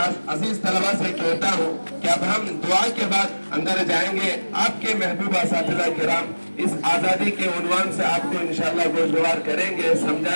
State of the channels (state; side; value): inverted; both; correlation -1.00